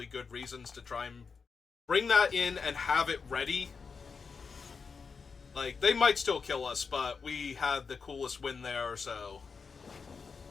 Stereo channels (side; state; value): right; quieter; 5.3 dB